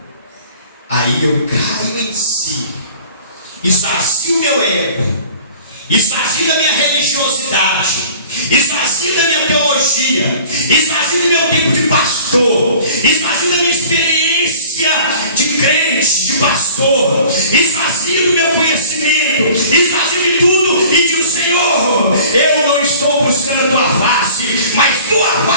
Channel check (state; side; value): inverted; both; correlation -0.47